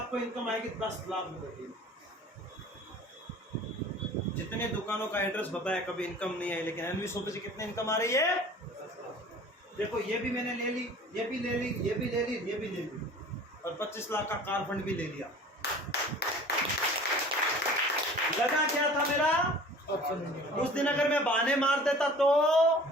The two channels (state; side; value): normal; both; correlation 0.45